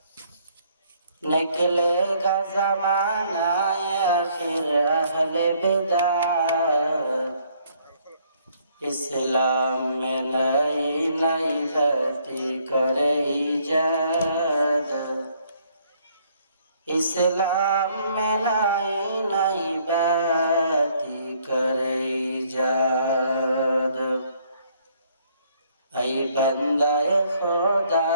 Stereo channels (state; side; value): inverted; both; correlation -0.66